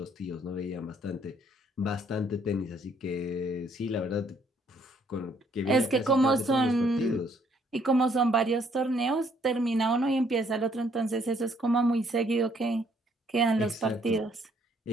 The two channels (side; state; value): both; normal; correlation 0.66